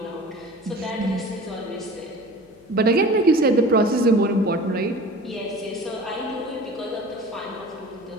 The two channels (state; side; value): noise; left; hum, 28 dB below the sound